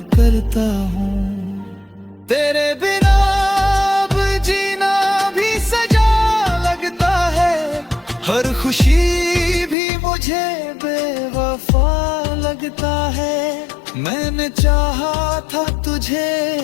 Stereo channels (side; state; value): right; drops out; at 9.8 s